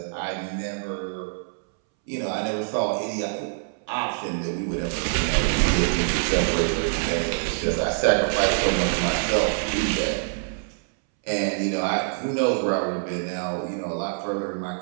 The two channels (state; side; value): silent; left; 62 dB below the other